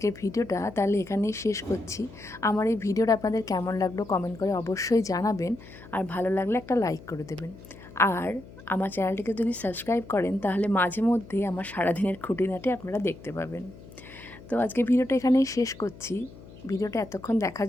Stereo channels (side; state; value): left; noise; hum, 19 dB below the sound